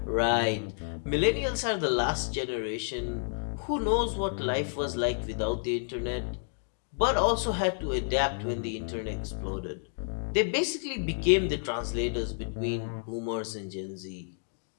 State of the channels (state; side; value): silent; right; digital silence